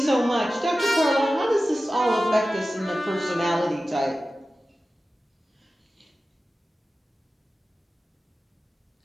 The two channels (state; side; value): normal; both; correlation 0.95